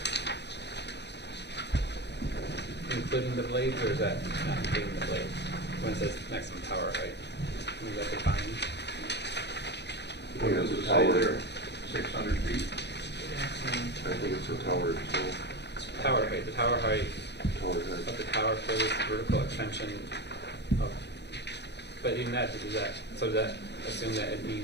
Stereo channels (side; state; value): right; late; 0.50 ms